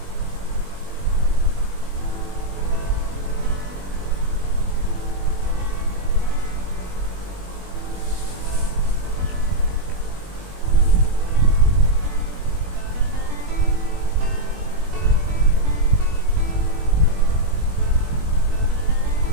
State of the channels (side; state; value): left; late; 21 ms